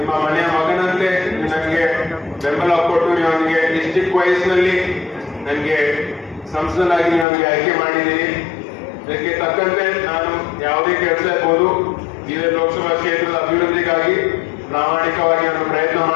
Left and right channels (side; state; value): right; drops out; at 7.2 s